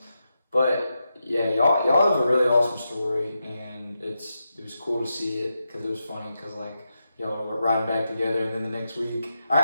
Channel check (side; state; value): both; inverted; correlation -0.87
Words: but yeah, y'all have a really awesome story, and it was cool to see it because it was funny because y'all were riding back together, and then the next week